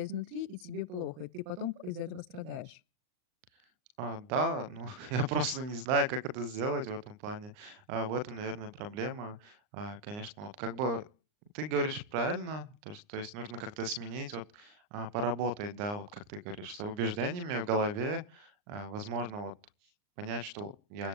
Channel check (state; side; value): late; left; 39 ms